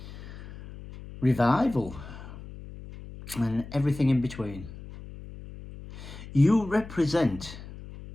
revival, and everything in between. You represent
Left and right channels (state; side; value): noise; left; hum, 14 dB below the sound